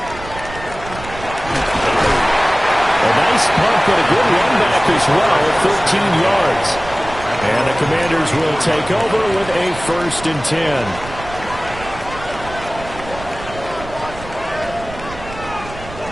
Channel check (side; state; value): right; noise; rumble, 14 dB below the sound